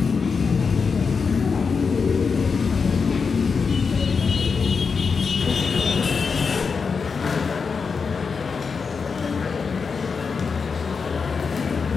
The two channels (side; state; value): right; quieter; 5.3 dB